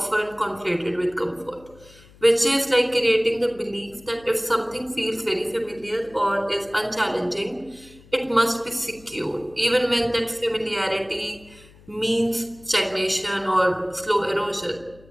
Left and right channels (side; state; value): left; noise; hum, 25 dB below the sound